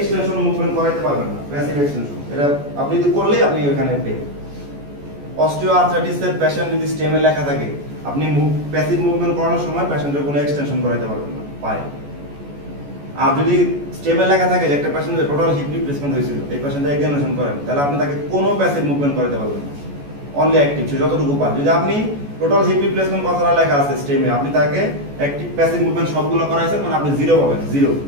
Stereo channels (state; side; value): late; left; 14 ms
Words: মুভমেন্ট করাইতে পারবেন না, প্যাসিভ এক্সটেনশন। এটা আপনি যদি করলেই আপনি ওখানে পেয়ে। অস্টিওআর্থ্রাইটিসের পেশেন্ট যদি স্টেমে লেখা থাকে, আপনি প্যাসিভ মুভমেন্ট করানোর সময় পেশেন্টের কোনো এক্সটেনশন করাইতে পারবেন না পায়ে। আর যদি স্টেমে লেখা থাকে যে একটা পেশেন্টের টোটাল হিপ রিপ্লেসমেন্ট হয়েছিল, এই পেশেন্টের এক্সামিনেশন করেন, তাহলে আপনি তাকে কোনো প্যাসিভ মুভমেন্ট করাইতে পারবেন না, অনলি অ্যাক্টিভ যতটুকু পান। যদি আপনি টোটাল হিপ রিপ্লেসমেন্ট কথাটা লেখা আছে স্টেমে, আপনি তাকে অ্যাক্টিভ প্যাসিভ মুভমেন্ট সবগুলো করাইছেন, মানে আপনি জিরো পাবেন, জিরো।